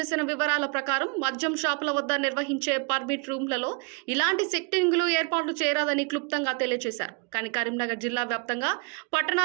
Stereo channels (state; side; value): quieter; left; 33.8 dB